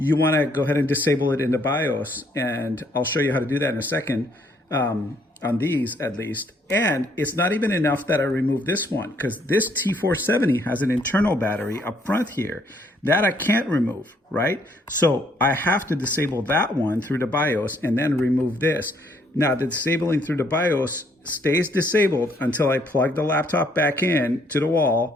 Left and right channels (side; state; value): both; normal; correlation 0.67